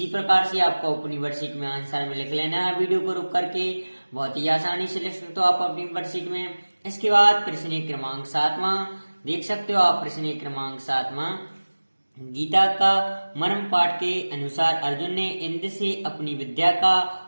प्रकार से आपको अपनी वर्कशीट में आंसर में लिख लेना है। वीडियो को रुक करके बहुत ही आसानी से लिख सकते हो आप अपनी वर्कशीट में। इसके बाद प्रश्न क्रमांक 7वां देख सकते हो आप। प्रश्न क्रमांक 7वां, गीता का मर्म पाठ के अनुसार अर्जुन ने इंद्र से अपनी विद्या का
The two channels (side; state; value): both; inverted; correlation -1.00